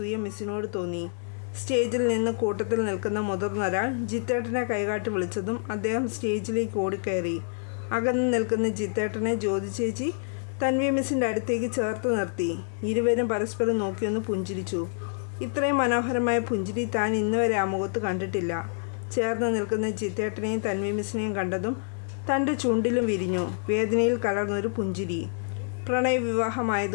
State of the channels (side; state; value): right; silent; digital silence